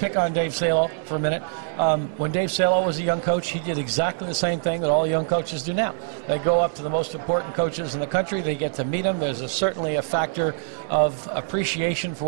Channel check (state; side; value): silent; left; digital silence